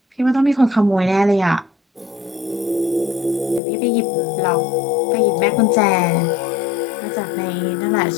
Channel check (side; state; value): right; drops out; at 3.6 s